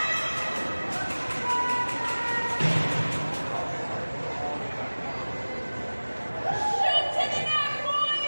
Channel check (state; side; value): inverted; both; correlation -1.00